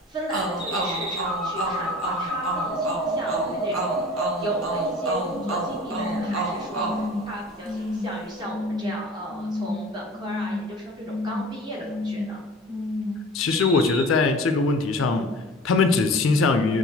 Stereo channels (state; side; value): normal; both; correlation 0.42